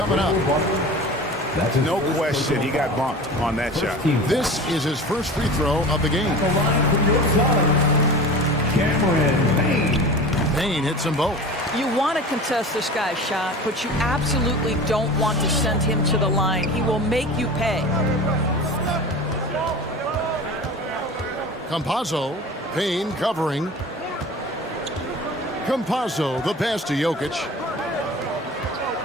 up. No question, he got bumped on that shot. This is his first free throw of the game. Cameron Payne. Payne hits them both. You want to contest this guy's shot, but you absolutely don't want to send him to the line. He will make you pay. Campazzo. Payne covering. Campazzo, the pass to Jokic.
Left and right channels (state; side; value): normal; both; correlation 0.36